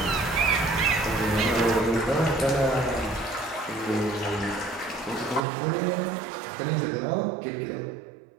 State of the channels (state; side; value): drops out; left; at 5.4 s